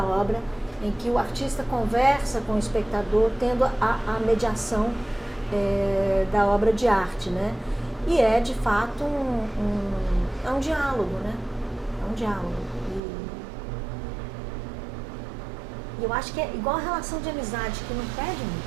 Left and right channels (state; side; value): drops out; left; at 13.0 s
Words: obra em que o artista conversa com o espectador, tendo a mediação da obra de arte, né? E é, de fato, um diálogo, né? É um diálogo. E eu acho que é igual a relação de amizade, que não perde